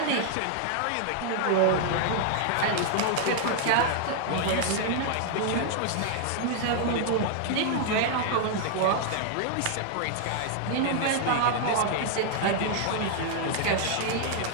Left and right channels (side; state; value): both; different; correlation -0.01